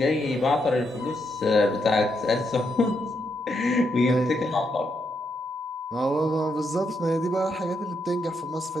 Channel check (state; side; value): normal; both; correlation 0.80